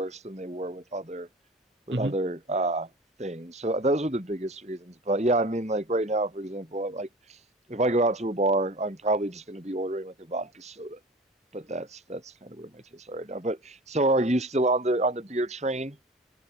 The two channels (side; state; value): both; normal; correlation 0.37